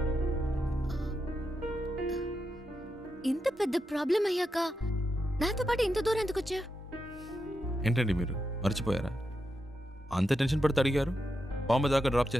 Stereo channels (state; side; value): normal; both; correlation 0.86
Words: ఇంత పెద్ద ప్రాబ్లం అయ్యాక నాతో పాటు ఇంత దూరం ఎందుకు వచ్చా? ఏంటండి మీరు మర్చిపోయారా? అంత టెన్షన్ పడితే అడిగారు బాంబే దాకా డ్రాప్